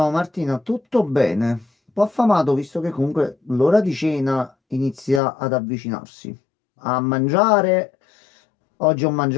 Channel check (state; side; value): drops out; right; at 5.2 s